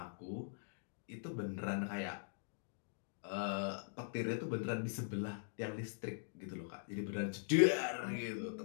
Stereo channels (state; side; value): silent; right; digital silence